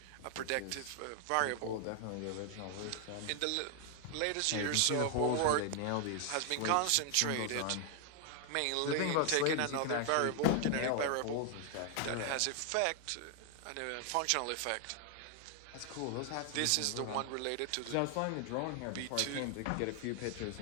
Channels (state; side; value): different; both; correlation 0.00